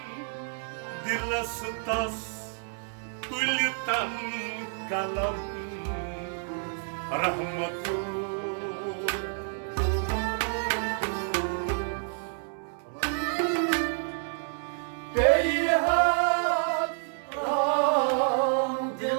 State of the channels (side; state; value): left; silent; 59 dB below the other